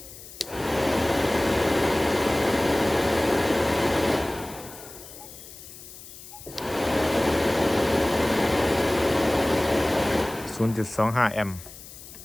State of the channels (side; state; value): left; noise; hiss, 16 dB below the sound